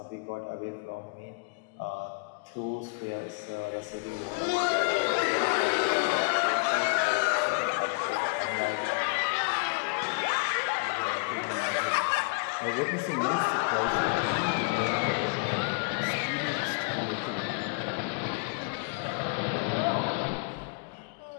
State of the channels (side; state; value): right; quieter; 34.6 dB